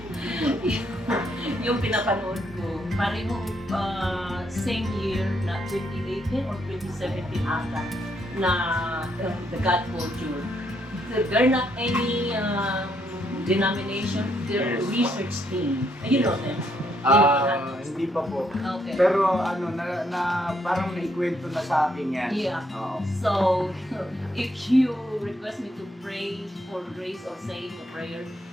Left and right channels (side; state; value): both; normal; correlation 0.74